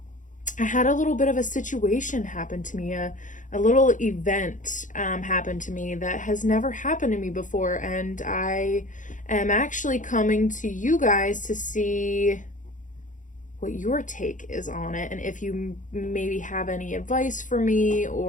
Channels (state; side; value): late; right; 0.37 ms